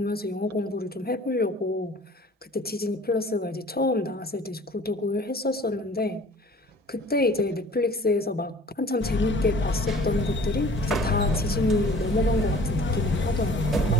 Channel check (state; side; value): normal; both; correlation 0.48